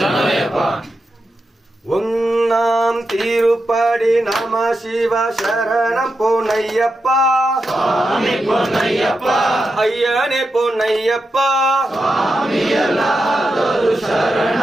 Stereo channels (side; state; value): both; normal; correlation 0.88